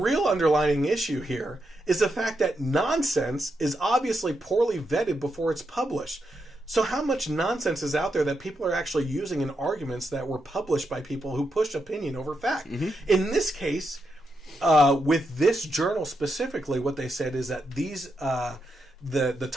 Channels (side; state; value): both; normal; correlation 0.84